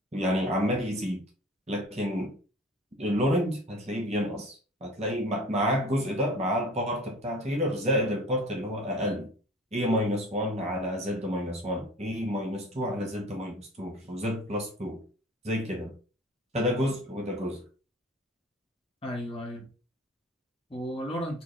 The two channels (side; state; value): both; normal; correlation 0.42